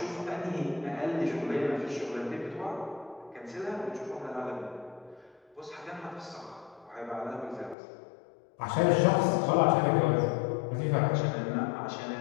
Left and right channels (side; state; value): right; drops out; at 7.8 s